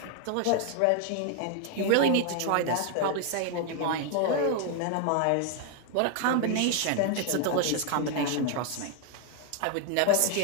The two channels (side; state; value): both; different; correlation 0.01